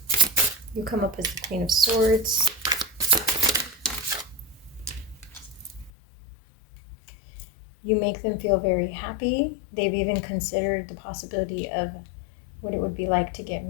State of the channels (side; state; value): right; drops out; at 5.9 s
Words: You come up as the Queen of Swords. You make them feel very happy. They've even considered the possibility of what it would be like to get